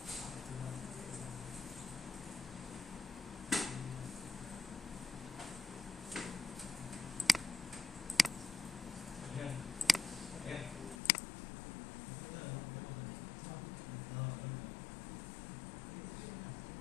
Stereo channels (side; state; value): right; drops out; at 11.0 s